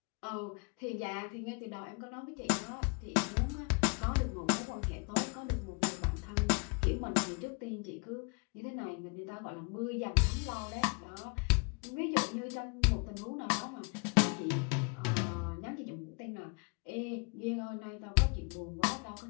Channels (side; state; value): right; quieter; 34.5 dB